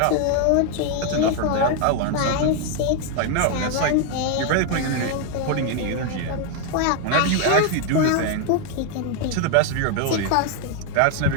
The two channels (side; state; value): both; different; correlation 0.01